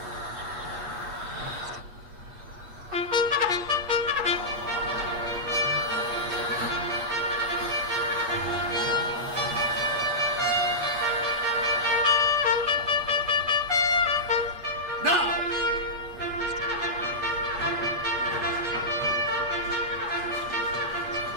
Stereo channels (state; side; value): late; left; 8.3 ms